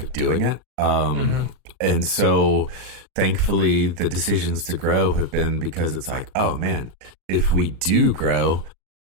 doing it. And so thankfully the decisions to grow have been because it's like, oh man, if we do grow,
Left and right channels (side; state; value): left; late; 38 ms